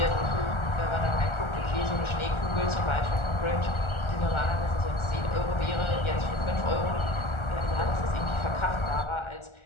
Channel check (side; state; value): right; late; 1.4 ms